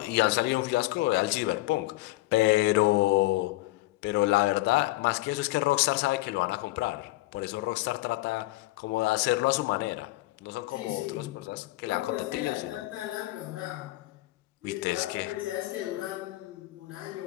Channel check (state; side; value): quieter; right; 19.0 dB